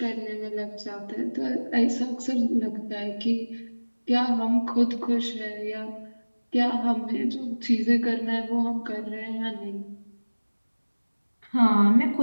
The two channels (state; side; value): inverted; both; correlation -1.00